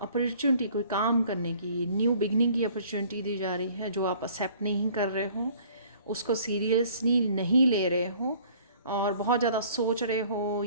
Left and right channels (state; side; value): inverted; both; correlation -0.54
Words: कोई काम करने की, न्यू बिगनिंग की अपॉर्चुनिटी दी जा रही है, जो आप एक्सेप्ट नहीं कर रहे हो, उसको सीरियसली नहीं ले रहे हो और बहुत ज़्यादा सोच रहे हो